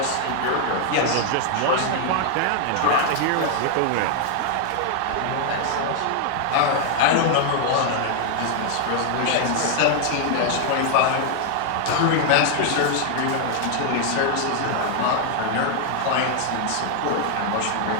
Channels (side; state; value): both; different; correlation 0.00